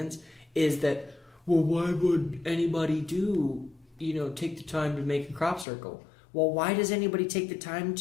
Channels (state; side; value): drops out; right; at 5.7 s